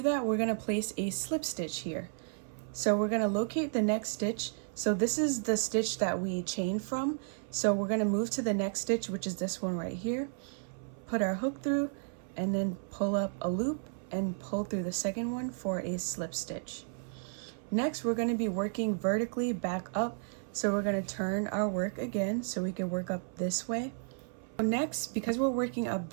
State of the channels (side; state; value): left; silent; 56 dB below the other